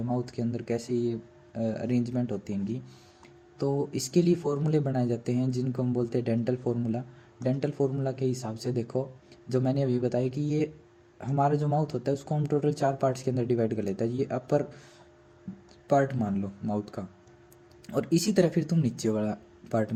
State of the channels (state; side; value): identical; both; correlation 1.00